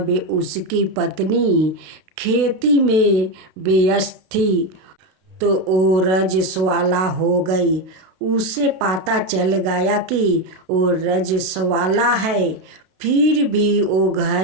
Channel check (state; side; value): late; left; 32 ms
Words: उसकी पत्नी खेती में व्यस्त थी तो वो रजस्वला हो गई। उसे पता चल गया कि वो रजस्वला है, फिर भी वो